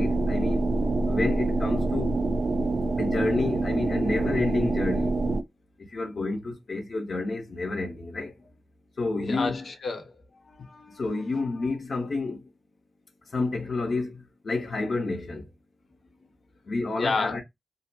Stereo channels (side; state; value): both; normal; correlation 0.90